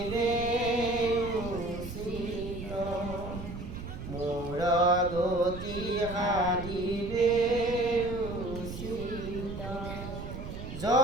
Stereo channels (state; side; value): noise; right; rumble, 9 dB below the sound